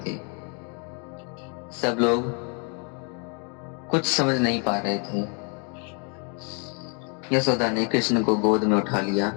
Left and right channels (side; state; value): right; quieter; 37.3 dB